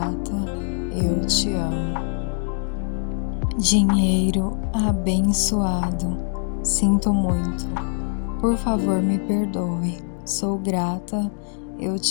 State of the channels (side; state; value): right; silent; 57 dB below the other